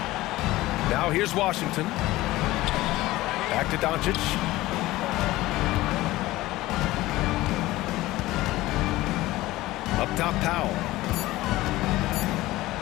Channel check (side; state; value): right; quieter; 17.7 dB